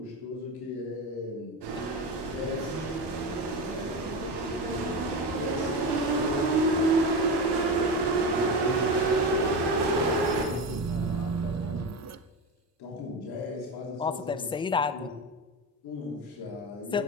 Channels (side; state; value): both; normal; correlation 0.21